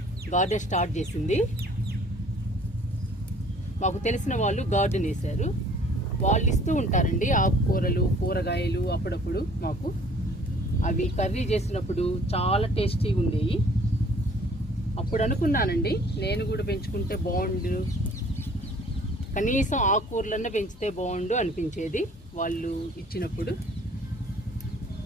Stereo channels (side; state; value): both; normal; correlation 0.55